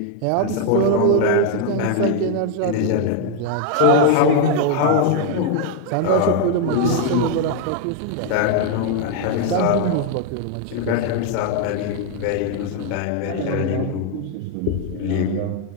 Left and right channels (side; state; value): both; different; correlation 0.00